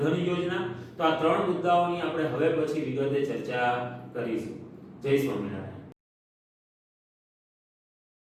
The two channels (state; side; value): identical; both; correlation 1.00